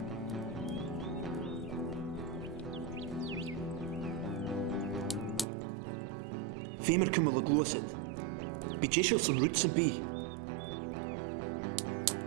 Femer kummel het los het. Beetje zo'n rutsen bij.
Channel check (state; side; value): drops out; left; at 5.5 s